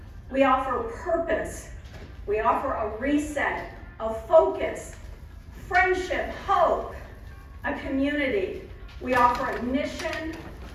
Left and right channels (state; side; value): identical; both; correlation 1.00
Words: We offer purpose. We offer a reset, a focus, friendship, hope, a community. We offer a mission